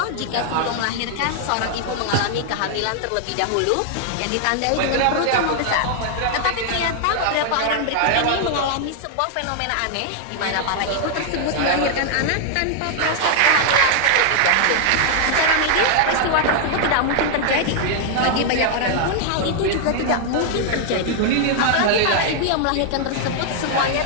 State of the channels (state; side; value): different; both; correlation 0.00